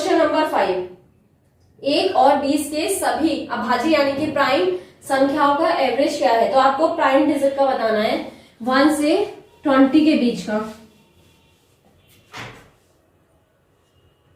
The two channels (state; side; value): identical; both; correlation 1.00